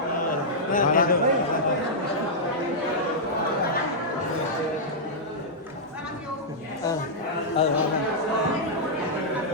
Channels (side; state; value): both; normal; correlation -0.09